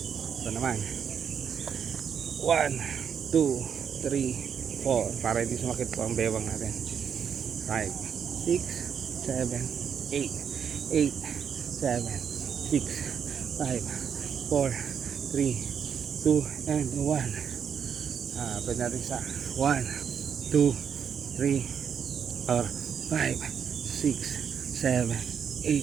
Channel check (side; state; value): left; quieter; 7.5 dB